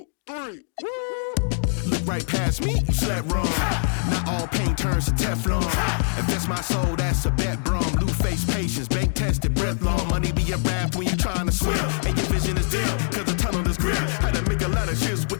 Look right past me, you slept wrong. Not all pain turns to Teflon. Invest my soul, that's a bet, brum. Blue face patience, bank tested, breath long. Money be a rap when you trying to swim. And your vision is dim, cause the tunnel is grim. Had to make a lot of shifts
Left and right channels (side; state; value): right; silent; 63 dB below the other